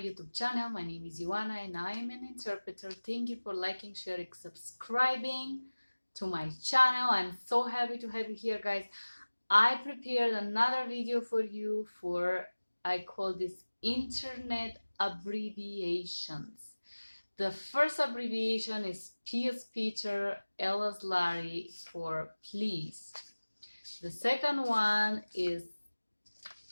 channel. My name is Ioana and I am an interpreter. Thank you for liking, sharing, subscribing to my channel. I'm so happy to have you here, guys. I prepared another video for you I call this internet abbreviations. The first abbreviation is P as Peter, L as Larry for please. The second one is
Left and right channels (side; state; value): both; inverted; correlation -1.00